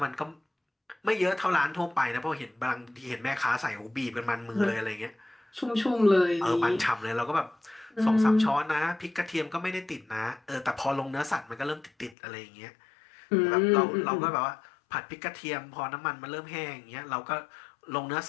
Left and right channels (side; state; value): right; drops out; at 12.2 s